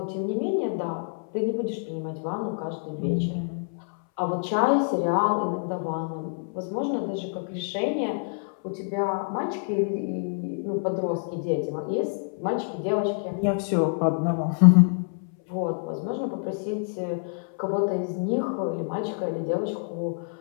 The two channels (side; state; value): right; silent; 60 dB below the other